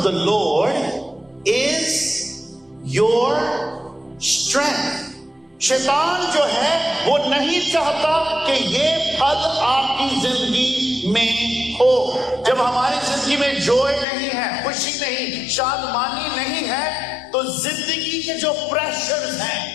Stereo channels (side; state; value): right; drops out; at 14.1 s